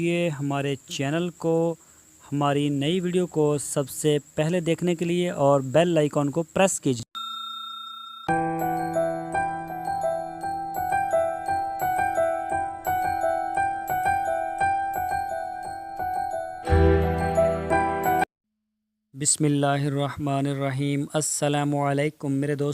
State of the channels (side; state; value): both; identical; correlation 1.00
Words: हमारे channel को, हमारी नई वीडियो को सबसे पहले देखने के लिए और बेल आइकॉन को प्रेस कीजिए। बिस्मिल्लाहिर्रहमानिर्रहीम। अस्सलामुअलैकुम मेरे